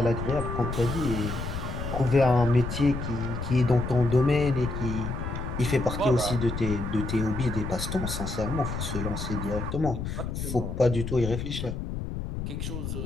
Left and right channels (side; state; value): left; noise; rumble, 5 dB below the sound